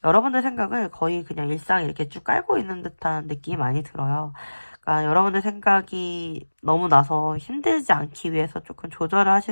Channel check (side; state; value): both; inverted; correlation -1.00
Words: 여러분들 생각을 거의 그냥 일상에 이렇게 쭉 깔고 있는 듯한 느낌이 많이 들어요. 그러니까 여러분들 생각이 너무 나서 힘들지 않기 위해서 조금 조절을